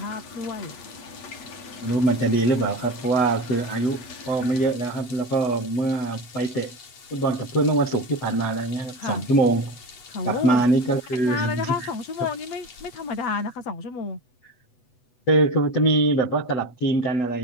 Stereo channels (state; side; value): late; right; 8.1 ms